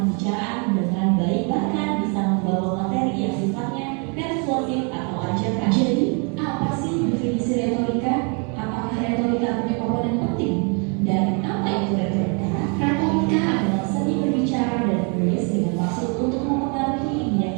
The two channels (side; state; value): left; quieter; 36.2 dB